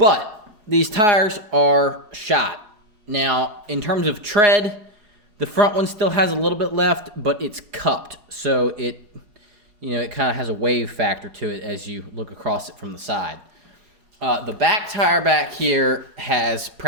these tires are shot. Now, in terms of tread, the front one still has a little bit left, but it's cupped. So it, you know, it kind of has a wave factor to it as you look across it from the side. The back tire back here has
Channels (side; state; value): left; late; 4.8 ms